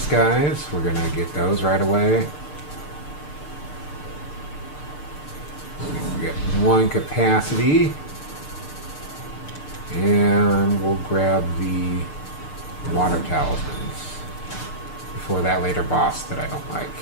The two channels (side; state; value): right; late; 6.7 ms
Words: guys. We're going to get those right away. We get one capacity. And we'll grab the water talismans before that later boss that I don't like.